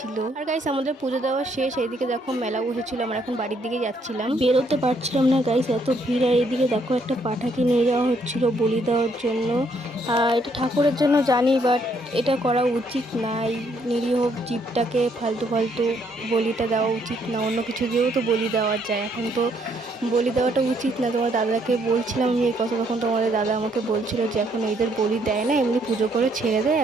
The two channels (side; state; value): both; normal; correlation 0.70